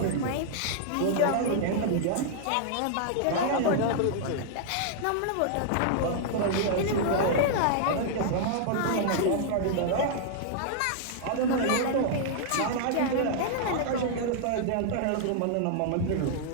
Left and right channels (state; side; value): different; both; correlation -0.01